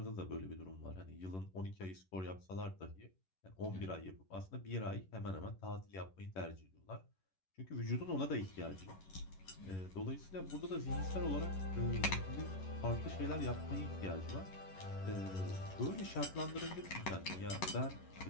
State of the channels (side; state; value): right; late; 11 ms